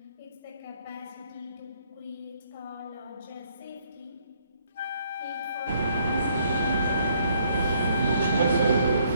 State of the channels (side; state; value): both; inverted; correlation -0.66